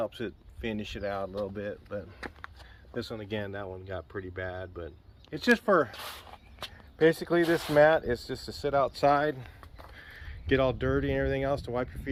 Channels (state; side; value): identical; both; correlation 1.00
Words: it finish it out a little bit, but this one again, that one got pretty bad, but it's just for, basically this mat is just to sit outside, get all dirty and everything else, to wipe your